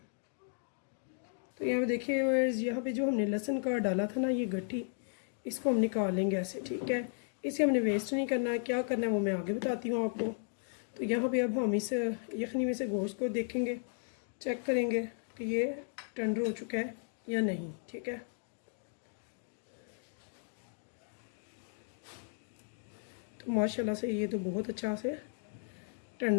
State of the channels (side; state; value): right; silent; 54 dB below the other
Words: तो यहाँ पे देखिए, यहाँ पे जो हमने लहसुन का डाला था ना, ये गट्ठी, इसको हम निकाल लेंगे ऐसे, ठीक है। इसे हमने वेस्ट नहीं करना है। क्या करना है वो मैं आगे बताती हूँ आपको। तो यहाँ पे अब हम इस यखनी में से गोश्त को देखेंगे, चेक करेंगे कि ये टेंडर हो चुका है या नहीं, ठीक है। तो माशाल्लाह से ये तो बहुत अच्छा से